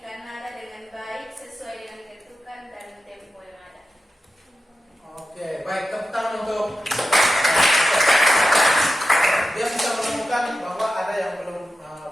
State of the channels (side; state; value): both; normal; correlation 0.91